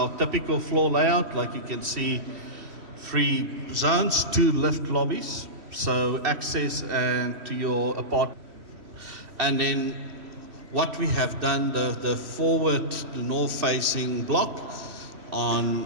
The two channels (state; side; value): late; left; 2.7 ms